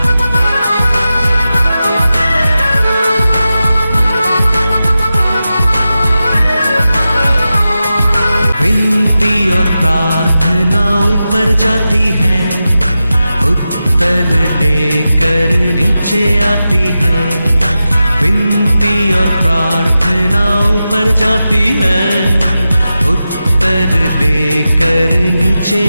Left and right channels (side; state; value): both; inverted; correlation -0.92